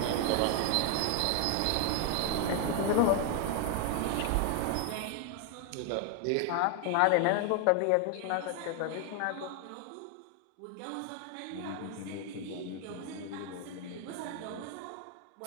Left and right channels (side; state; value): both; different; correlation 0.00